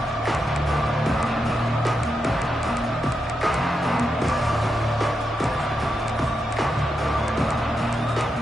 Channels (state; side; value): normal; both; correlation 0.85